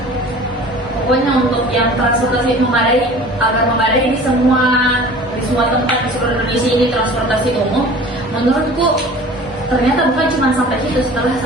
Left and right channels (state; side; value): normal; both; correlation 0.43